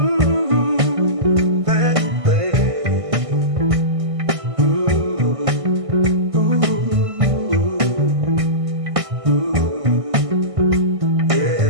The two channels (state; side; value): late; left; 1.6 ms